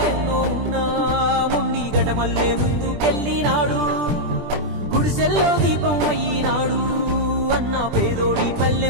ఉన్నా ముండి గటమల్లే ముందుకెళ్ళినాడు గుడిసెల్లో దీపం అయ్యినాడు అన్న పేదోడి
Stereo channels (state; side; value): late; left; 20 ms